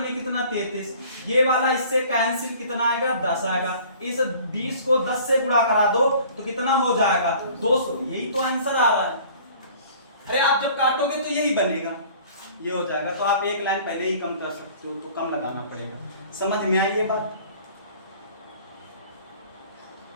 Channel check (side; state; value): both; inverted; correlation -0.49